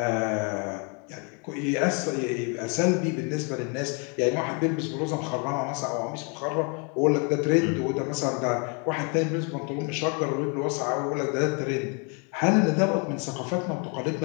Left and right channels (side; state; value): right; quieter; 35.6 dB